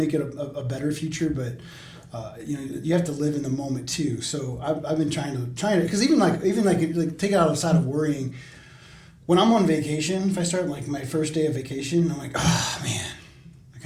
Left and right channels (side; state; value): both; identical; correlation 1.00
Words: it a better future, but you have to live in the moment too. So I've been trying to, because even like take it outside of worrying. When I'm on vacation, if I start like my first day of vacation, I'm like, oh man, I